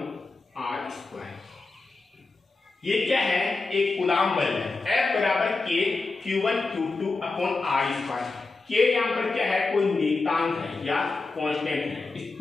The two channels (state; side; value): quieter; right; 3.7 dB